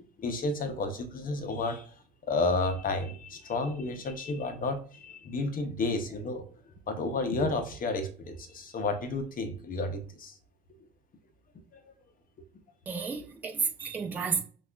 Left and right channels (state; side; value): normal; both; correlation 0.25